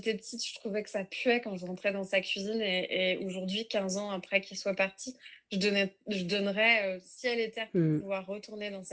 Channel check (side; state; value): both; identical; correlation 1.00